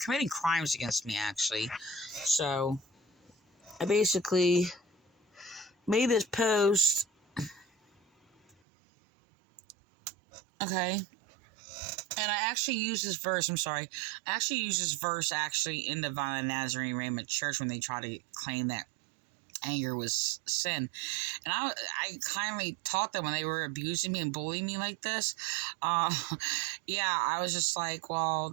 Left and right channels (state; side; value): drops out; left; at 8.6 s